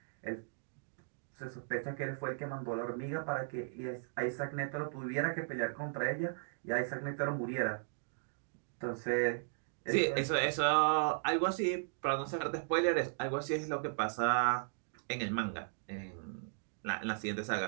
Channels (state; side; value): silent; left; digital silence